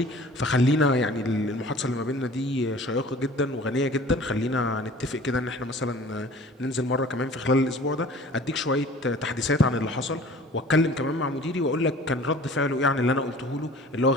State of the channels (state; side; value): normal; both; correlation 0.46